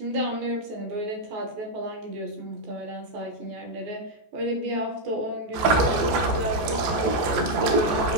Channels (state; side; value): late; left; 14 ms